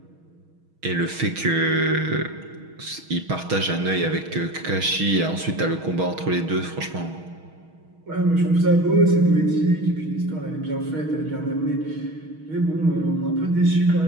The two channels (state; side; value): late; left; 6.3 ms